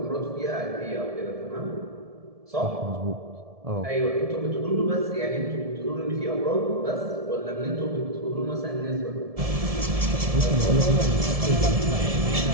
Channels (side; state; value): left; late; 1.7 ms